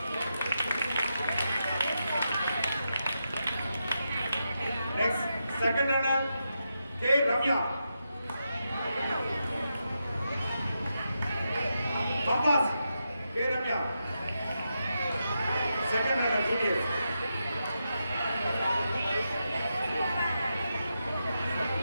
Next, second runner, K. Ramya. Compass, K. Ramya. Second runner, juniors.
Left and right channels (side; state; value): both; inverted; correlation -0.86